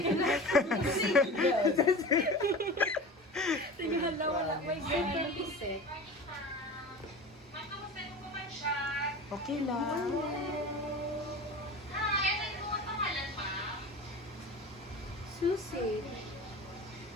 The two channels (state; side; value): normal; both; correlation 0.34